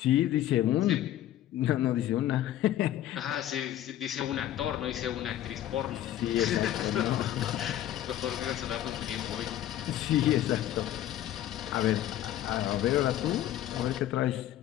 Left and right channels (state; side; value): quieter; right; 12.5 dB